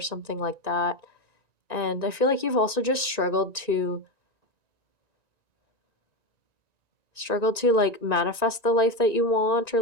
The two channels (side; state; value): left; late; 1.9 ms